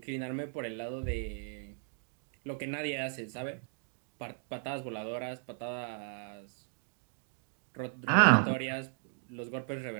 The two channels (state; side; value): silent; left; 54 dB below the other